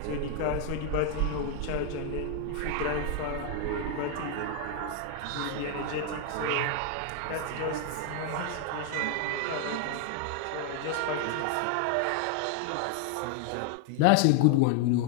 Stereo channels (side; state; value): both; different; correlation 0.00